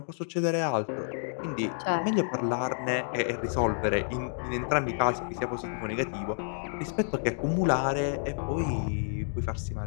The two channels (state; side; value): silent; right; digital silence